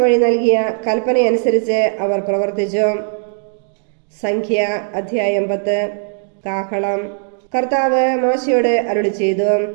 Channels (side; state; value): left; silent; digital silence